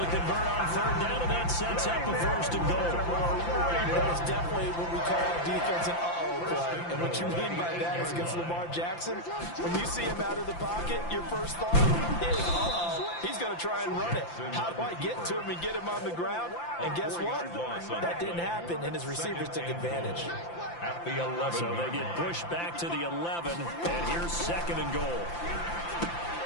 convert on 3rd down, and that sets up a first and goal. That's definitely what we call defense an uh-oh play. And what you mean by that is against Lamar Jackson, when you see him out of the pocket, your first thought is, uh-oh, he's going to try and run it. How do I get to him and get him on the ground? And guess what? That didn't happen, and his receivers took advantage. At the 11. So they get pushed back to the 11, and here's 2nd and goal.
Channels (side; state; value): right; late; 5.8 ms